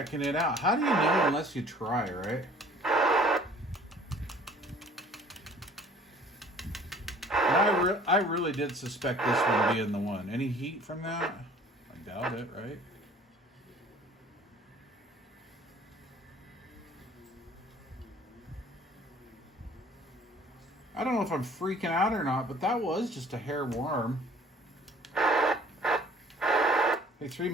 it out. How do you know unless you try, right? And I really did suspect this one being the one. Any heat from that? I doubt it, right? I don't know if I'm freaking out or not, but that was just a hair warm. Hey,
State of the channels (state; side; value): normal; both; correlation 0.53